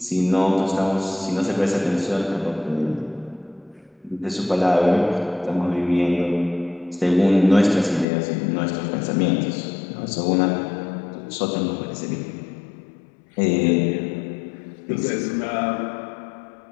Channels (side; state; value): right; drops out; at 8.1 s